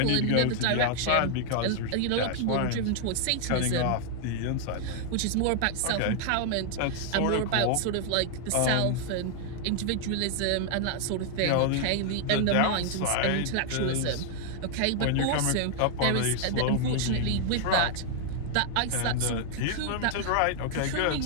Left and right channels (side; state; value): both; different; correlation 0.00